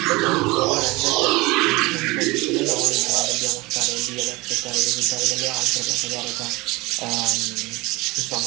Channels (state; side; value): quieter; left; 22.7 dB